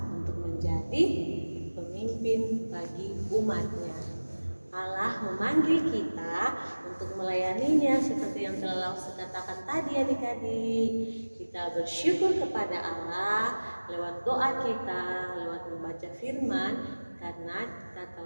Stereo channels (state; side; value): inverted; both; correlation -1.00